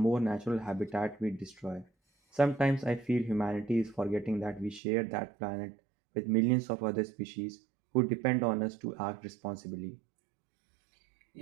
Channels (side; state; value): left; drops out; at 4.8 s